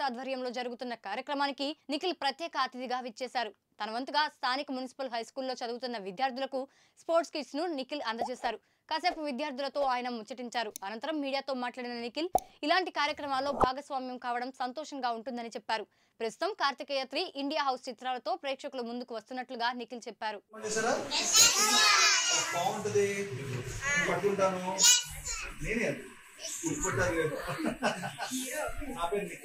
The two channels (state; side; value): identical; both; correlation 1.00